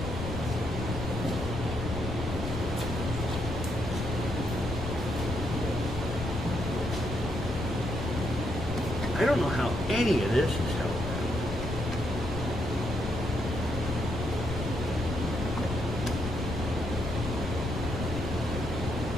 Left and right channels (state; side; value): noise; left; rumble, 4 dB below the sound